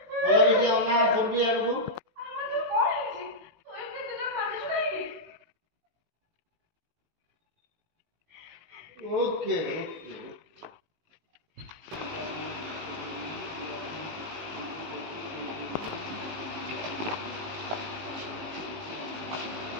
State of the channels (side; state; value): left; late; 18 ms